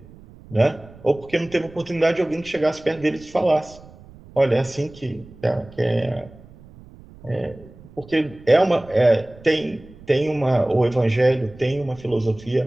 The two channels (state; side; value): noise; right; rumble, 21 dB below the sound